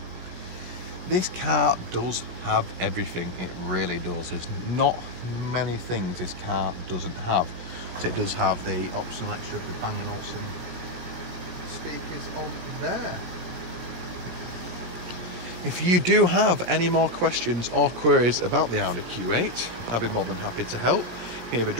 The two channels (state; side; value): late; left; 17 ms